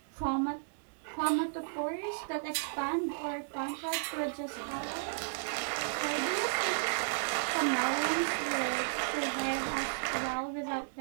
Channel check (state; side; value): silent; left; digital silence